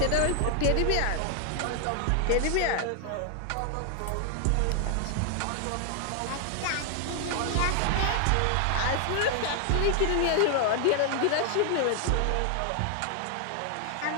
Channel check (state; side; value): different; both; correlation 0.00